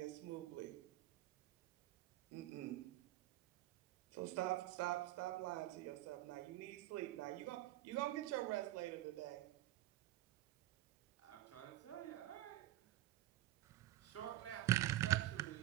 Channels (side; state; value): left; quieter; 15.1 dB